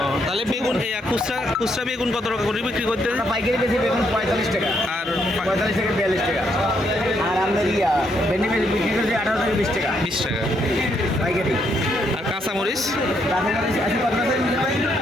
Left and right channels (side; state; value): both; normal; correlation 0.74